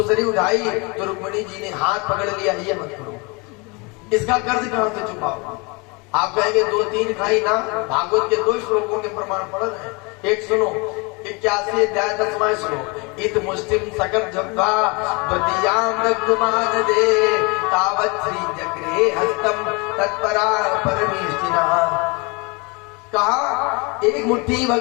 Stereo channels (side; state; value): right; quieter; 29.0 dB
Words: उठाई तो रुक्मिणी जी ने हाथ पकड़ लिया, ये मत करो, इसका कर्ज कहां से चुकाओ। आप कहेंगे 2-3 खाई ना, भागवत के 2 श्लोकों के प्रमाण पढ़ रहे हैं। एक सुनो, 81 अध्याय 10वां श्लोक, इत मुस्लिम सकट जब्बा द्वितीयाम नग्मान दे तावत् श्री जगरे हस्तम तत्परा परमेष्टिना। कहा एक मुट्ठी